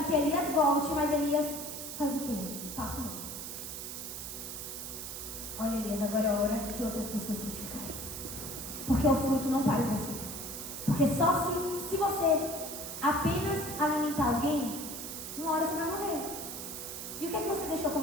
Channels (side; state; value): right; noise; hiss, 7 dB below the sound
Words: que Elias volte, mas Elias faz o quê? Passa o mundo. Olha, Elias, agora é hora de outras pessoas frutificarem. Porque o fruto não para em você. Porque só se você apenas alimentar alguém, uma hora você vai morrer. E o que é que você deixou